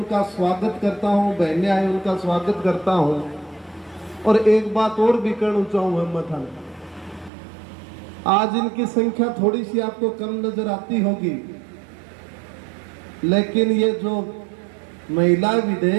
स्वागत करता हूं, बहनें आई उनका स्वागत करता हूं। और एक बात और भी कहना चाहूँ हिम्मत, आज इनकी संख्या थोड़ी सी आपको कम नजर आती होगी, लेकिन ये जो महिला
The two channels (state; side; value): drops out; left; at 7.3 s